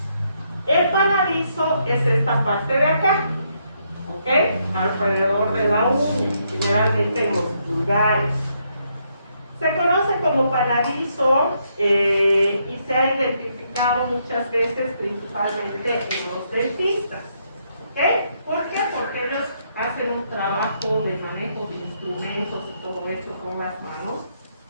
El panadizo es esta parte de acá, ¿ok? Alrededor de la uña, generalmente en los pulgares. Se conoce como panadizo y se ha identificado muchas veces principalmente en los dentistas. ¿Ok? ¿Por qué? Porque ellos hacen un trabajo de manejo de instrumentos y todo esto con las manos.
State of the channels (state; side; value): inverted; both; correlation -0.75